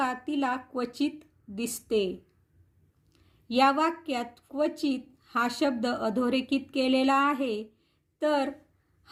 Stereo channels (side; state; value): both; identical; correlation 1.00